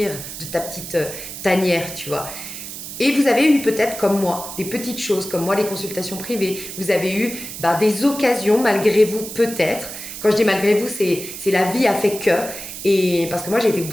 de ta petite tanière, tu vois. Et vous avez eu peut-être, comme moi, des petites choses, comme moi, les consultations privées. Vous avez eu des occasions, malgré vous, peut-être. Quand je dis malgré vous, c'est la vie a fait que. Et parce que moi, j'ai été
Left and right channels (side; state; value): right; noise; hiss, 10 dB below the sound